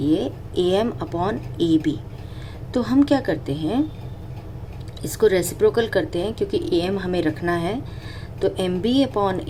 AM upon AB. तो हम क्या करते हैं, इसको रेसिप्रोकल करते हैं क्योंकि AM हमें रखना है. तो MB upon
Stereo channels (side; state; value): both; identical; correlation 1.00